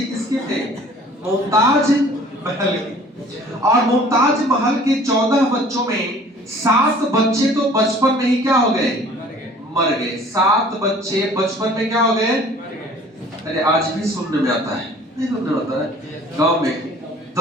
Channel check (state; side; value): normal; both; correlation 0.51